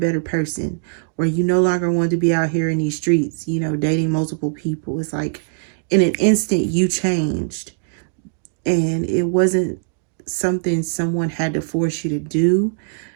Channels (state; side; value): silent; left; digital silence